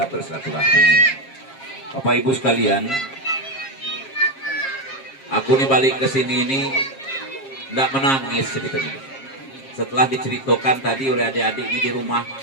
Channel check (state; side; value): late; right; 7.5 ms